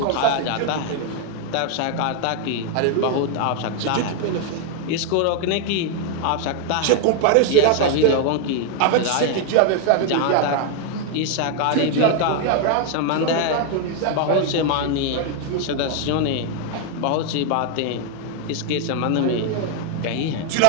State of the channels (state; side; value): different; both; correlation 0.00